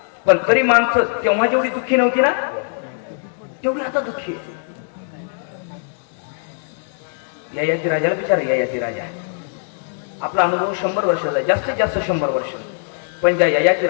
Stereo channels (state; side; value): silent; right; digital silence